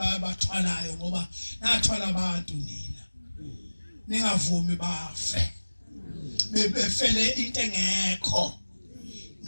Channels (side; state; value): both; inverted; correlation -1.00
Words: ngoba nathwala abantu nina. Ningavumi bafe. Befele into engekho.